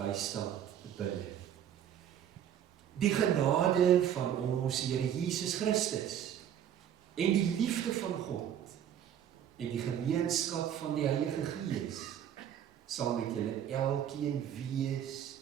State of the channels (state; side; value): quieter; left; 9.9 dB